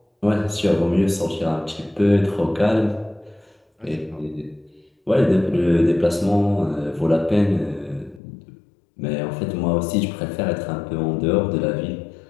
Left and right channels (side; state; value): right; drops out; at 8.2 s